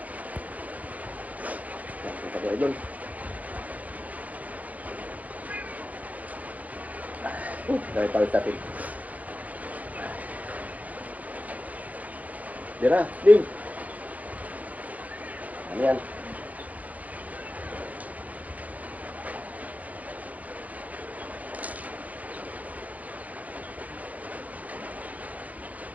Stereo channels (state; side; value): late; left; 0.075 ms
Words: Ito ko idol. Dahil pala sa atin. Dira, Ding. Ano yan?